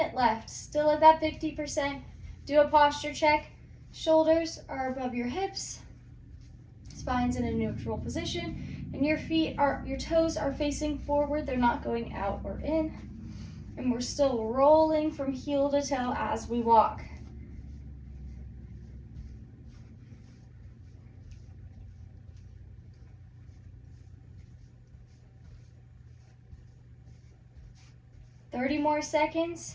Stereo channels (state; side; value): identical; both; correlation 1.00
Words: left. Still at that 50%. Do a posture check. Shoulders are above your hips. Spine's in a neutral position. And your toes are facing forward. They're not going out or in. And we're still rolling from heel to toe as we walk. Thirty more seconds.